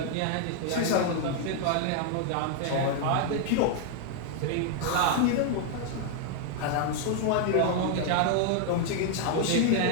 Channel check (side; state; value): both; different; correlation 0.00